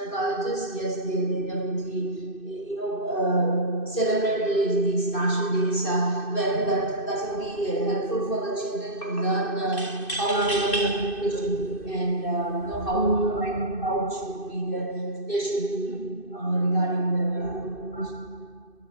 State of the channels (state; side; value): late; right; 2.6 ms